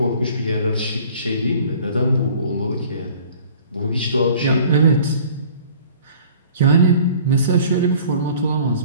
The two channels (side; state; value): both; inverted; correlation -0.50